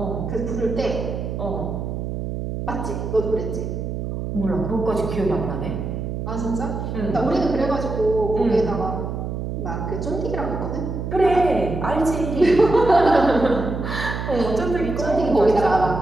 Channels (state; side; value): noise; right; hum, 4 dB below the sound